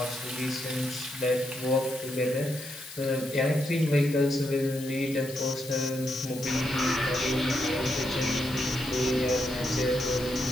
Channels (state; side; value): noise; left; hiss, 14 dB below the sound